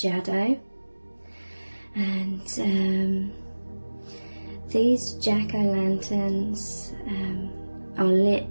and these jack-o'-lanterns are lit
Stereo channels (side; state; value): both; inverted; correlation -1.00